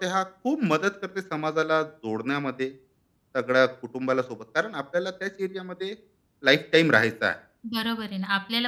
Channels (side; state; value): both; identical; correlation 1.00